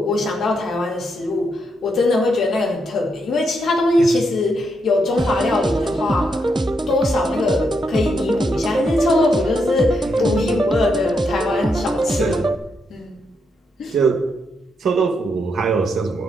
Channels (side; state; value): both; normal; correlation 0.80